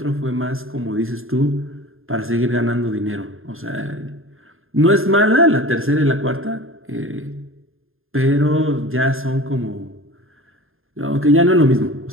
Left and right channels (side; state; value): left; late; 0.60 ms